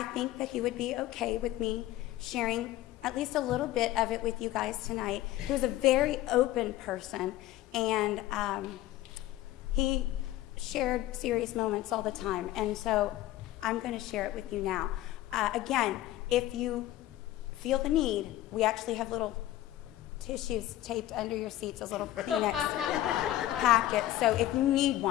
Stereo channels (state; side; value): quieter; right; 14.7 dB